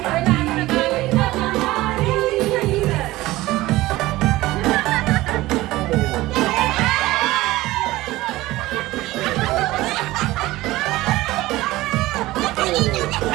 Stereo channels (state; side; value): quieter; left; 18.0 dB